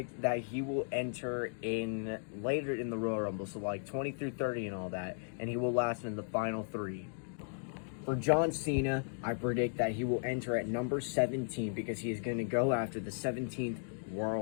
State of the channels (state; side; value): silent; right; digital silence